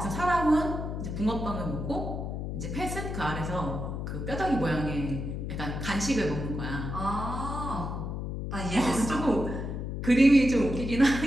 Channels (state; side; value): noise; left; hum, 4 dB below the sound